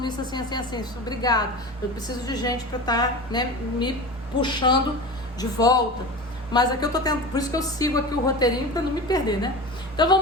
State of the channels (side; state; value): both; normal; correlation 0.30